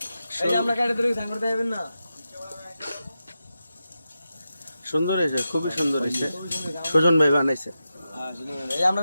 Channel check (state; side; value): inverted; both; correlation -0.90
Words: সুন্দর হয়েছে, খুবই সুন্দর হয়েছে। সুজন ভাই বানাইছে।